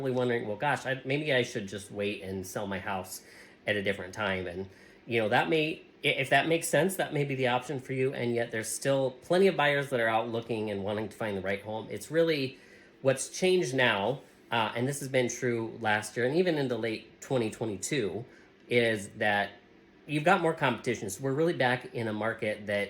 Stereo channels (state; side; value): identical; both; correlation 1.00